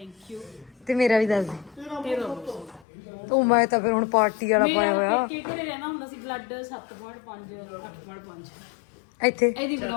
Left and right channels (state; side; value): drops out; right; at 2.9 s